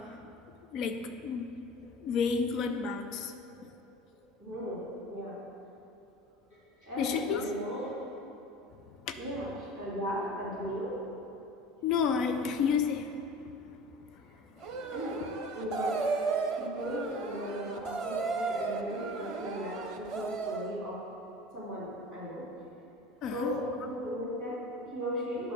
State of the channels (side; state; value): both; normal; correlation 0.38